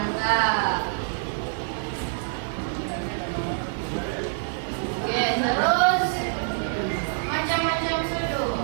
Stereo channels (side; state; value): left; silent; 61 dB below the other